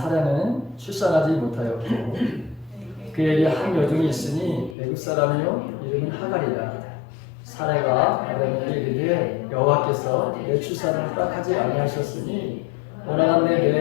출산하지 못하였고 그에게 한 여종이 있으니 애굽 사람이요 이름은 하갈이라. 사라가 아브라함에게 이르되 여호와께서 내 출산을 허락하지 아니하셨으니 원하건대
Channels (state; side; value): drops out; right; at 4.8 s